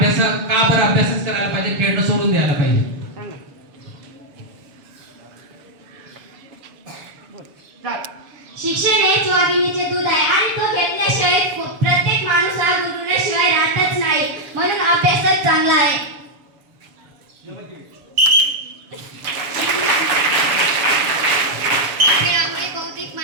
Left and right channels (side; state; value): left; late; 7.1 ms